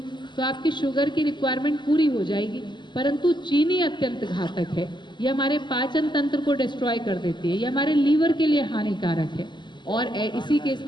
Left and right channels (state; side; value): late; right; 0.22 ms